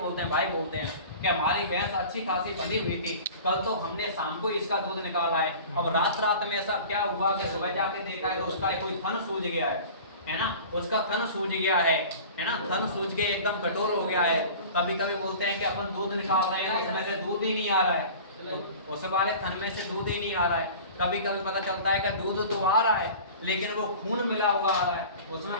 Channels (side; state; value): both; inverted; correlation -0.40